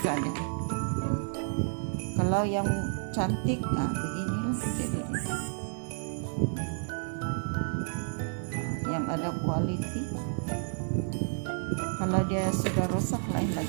deh. Kalau yang cantik, nah beginilah jadinya. Yang ada quality. Kalau dia sudah rusak lain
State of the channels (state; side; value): silent; left; digital silence